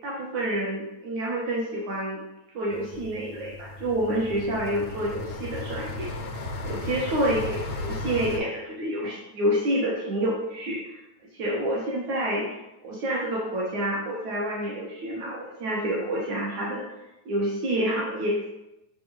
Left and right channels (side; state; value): left; late; 9.2 ms